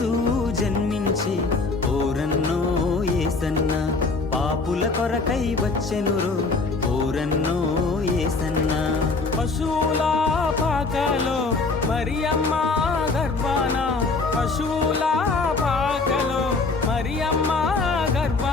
జన్మించి ఓరన్నో యేసన్న, పాపుల కొరకై వచ్చెనురో ఓరన్నో యేసన్న. పశువుల పాకలో మరియమ్మ గర్భాన, పశువుల పాకలో మరియమ్మ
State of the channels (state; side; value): quieter; right; 3.9 dB